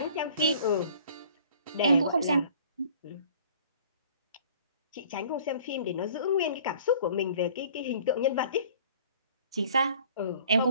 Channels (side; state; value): both; inverted; correlation -0.51